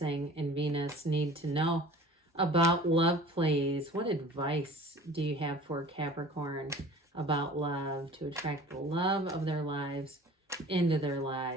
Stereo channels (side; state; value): both; normal; correlation 0.45